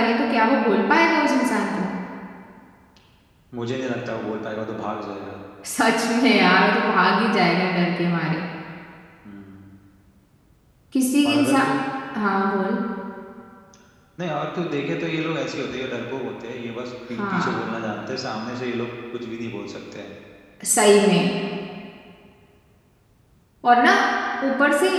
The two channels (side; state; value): both; identical; correlation 1.00